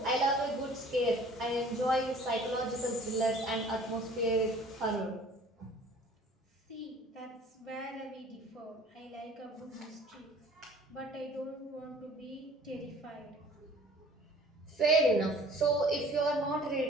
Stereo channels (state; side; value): normal; both; correlation 0.50